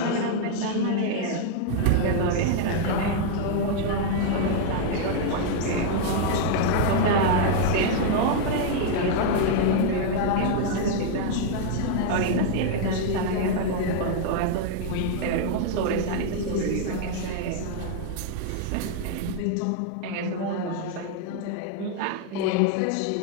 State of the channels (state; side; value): different; both; correlation 0.00